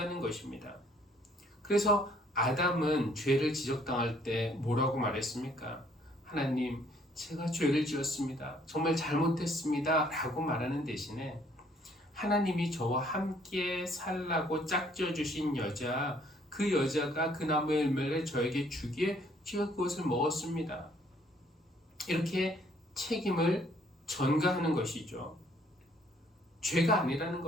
것입니다. 그래서 아담은 죄를 지적당할 때 뭐라고 말했습니까? 하나님, 제가 죄를 지었습니다. 정말 잘못했습니다. 라고 말하는 대신에 하나님이 저와 함께 살라고 짝지어 주신 여자, 그 여자가 그 나무의 열매를 저에게 주기에 제가 그것을 먹었습니다. 이렇게 책임을 전가하는 것이죠. 죄가 아니라는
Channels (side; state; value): both; normal; correlation 0.63